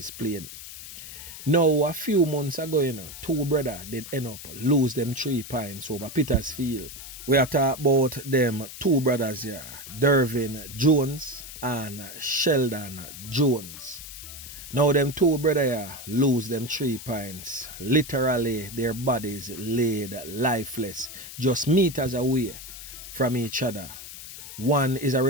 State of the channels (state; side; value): noise; left; hiss, 12 dB below the sound